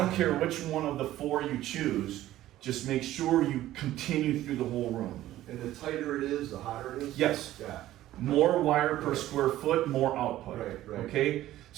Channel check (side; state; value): left; quieter; 14.3 dB